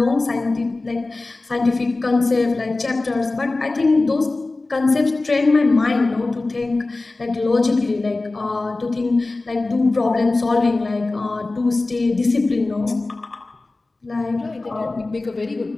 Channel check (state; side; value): quieter; right; 3.2 dB